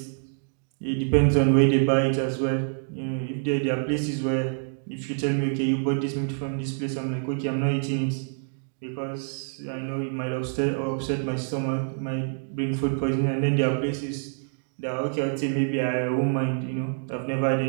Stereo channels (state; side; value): silent; left; digital silence